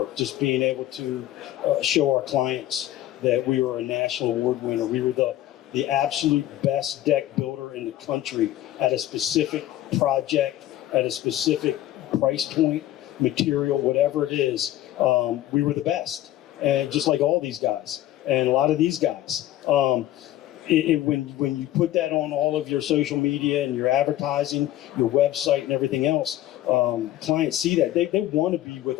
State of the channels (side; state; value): right; quieter; 13.9 dB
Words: Just being able to show our clients that we were a national award winner. We were the absolute best deck builder in the country at a specific project, at a specific price point, material, whatever it is. We were the best. And just like all these guys and a lot of these guys. When you put that on all of your social media and your advertising, your website and everything else, clients see that. They want to be with